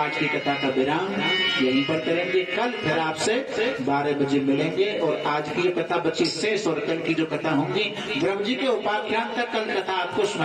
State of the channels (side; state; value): both; identical; correlation 1.00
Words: की कथा का विराम यहीं पर करेंगे। कल फिर आपसे 12 बजे मिलेंगे और आज की जो कथा बची शेष और कल की जो कथा होंगी ब्रह्म जी के उपाख्यान तक कल कथा आपको